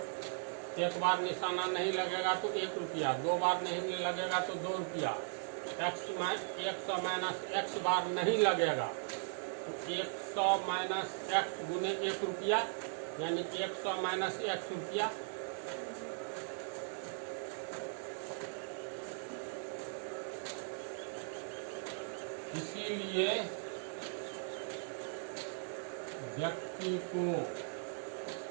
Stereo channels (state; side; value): silent; left; 52 dB below the other